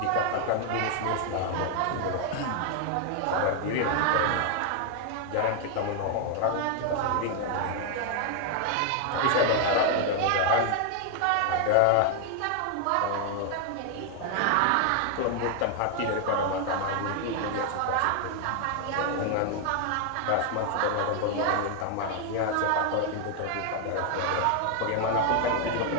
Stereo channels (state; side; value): different; both; correlation 0.00